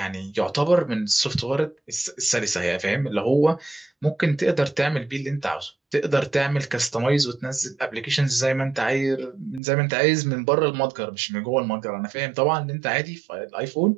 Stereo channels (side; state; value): left; drops out; at 9.6 s